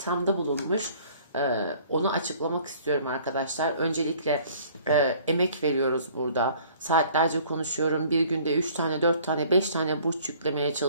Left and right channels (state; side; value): inverted; both; correlation -0.54